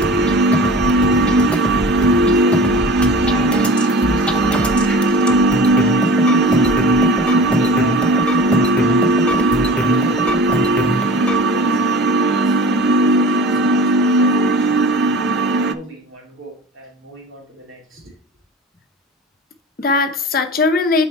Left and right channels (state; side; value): normal; both; correlation 0.38